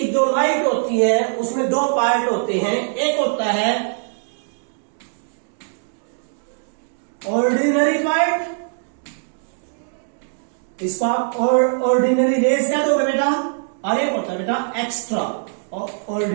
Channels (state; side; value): silent; left; digital silence